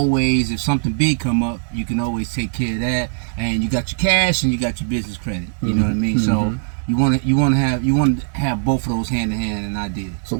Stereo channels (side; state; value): left; silent; digital silence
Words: if something big come up, you can always take care of that. And you got your cash and you got your business credit. You know what I mean? So you want to have both of those hand in hand, and I did. So